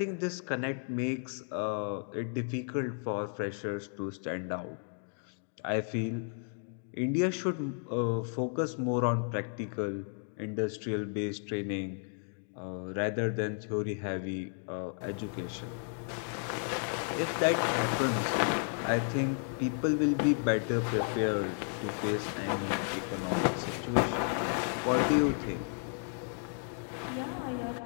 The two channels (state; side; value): silent; right; 55 dB below the other